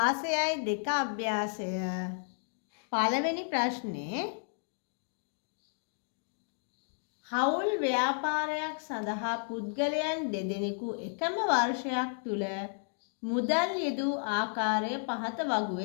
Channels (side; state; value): right; silent; digital silence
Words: අභ්‍යාසය පළවෙනි ප්‍රශ්නේ හවුල් ව්‍යාපාරයක් සඳහා පුද්ගලයන් දෙදෙනෙකු එකම වර්ෂයක් තුල මුදල් යෙදූ ආකාරය පහත